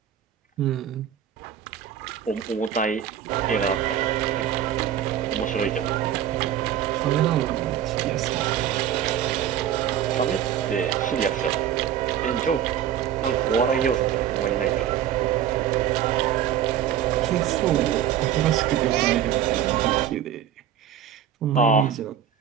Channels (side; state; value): left; quieter; 9.8 dB